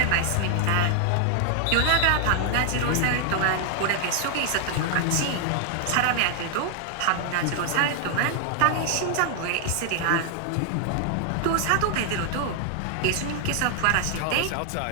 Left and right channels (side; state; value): both; different; correlation 0.00